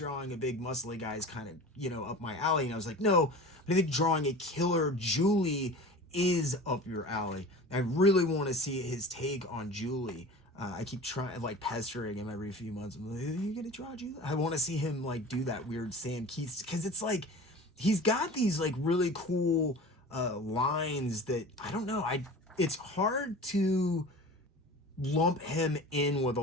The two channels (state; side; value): normal; both; correlation 0.37